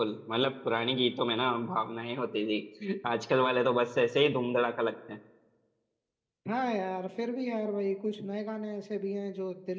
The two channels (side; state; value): both; identical; correlation 1.00